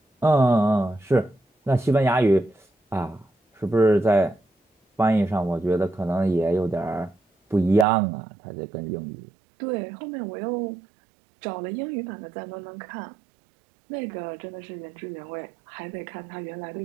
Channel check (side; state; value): left; drops out; at 7.9 s